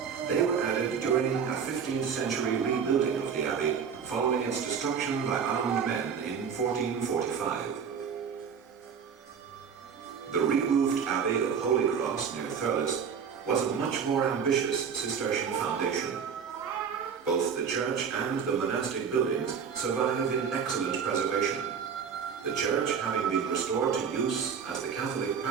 They were added during a 15th century rebuilding of the abbey, following its destruction by armed men in 1445. The re-roofed Abbey of Holy Cross near Thurles was a much more ambitious Cistercian foundation. Both the church and the monastic buildings survive in excellent preservation, the church having been restored to use as the Catholic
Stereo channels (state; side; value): quieter; left; 6.8 dB